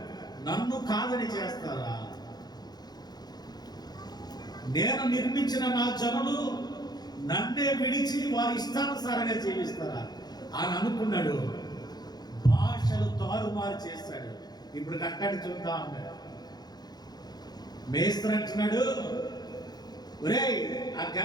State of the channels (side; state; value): right; late; 0.20 ms